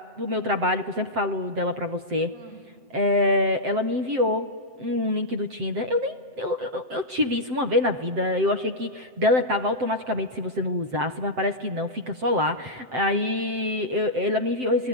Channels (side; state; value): left; late; 7.7 ms